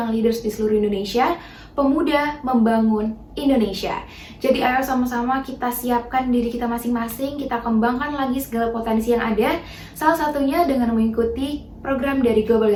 leaders di seluruh Indonesia. Pemuda membangun Indonesia. Jadi ayo sama-sama kita siapkan diri kita masing-masing, kita kembangkan lagi segala potensi yang ada, salah satunya dengan mengikuti program dari Global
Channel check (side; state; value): both; identical; correlation 1.00